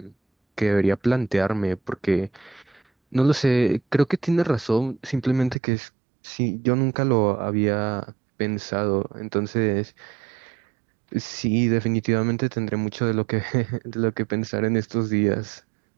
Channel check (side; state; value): left; drops out; at 5.6 s